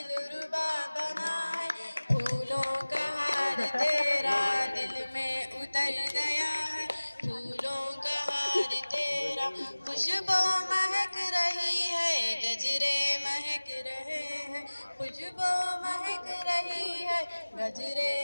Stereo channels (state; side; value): inverted; both; correlation -1.00